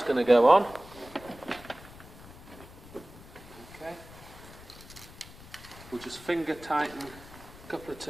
going to go on. Okay. We'll just finger tighten a couple of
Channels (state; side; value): noise; left; rumble, 18 dB below the sound